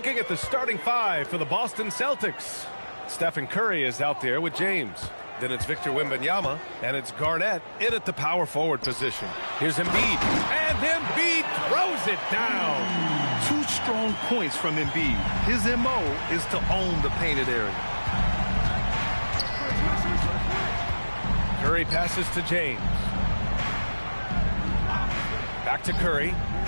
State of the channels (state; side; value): inverted; both; correlation -1.00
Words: at the starting five for the Boston Celtics. Stephen Curry is out there with James. Then it's Victor Wembanyama, and it's Garnett in at the power forward position. Here's Embiid, and Embiid throws it down. 2 strong points from Embiid. His MO is to own the painted area. Curry passes to James. Back to Curry.